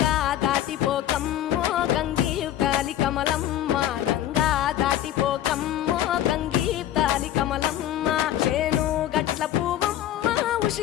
దాటిపోకమ్మో గంగీ తాలి కమలమ్మ గంగా దాటిపోకమ్మో గంగీ తాలి కమలమ్మ చేను గట్ల పువ్వమ్మ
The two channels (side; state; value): right; quieter; 12.2 dB